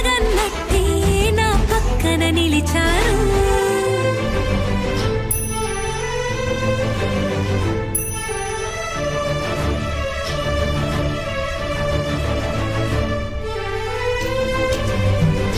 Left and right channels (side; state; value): both; identical; correlation 1.00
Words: నా పక్కన నిలిచారు.